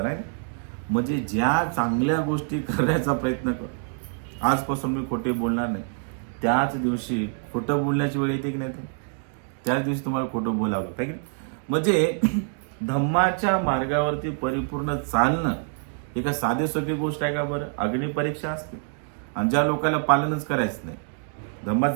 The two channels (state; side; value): silent; left; 59 dB below the other